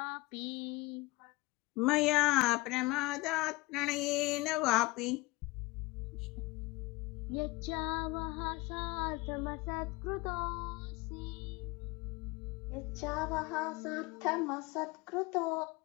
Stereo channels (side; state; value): right; quieter; 21.9 dB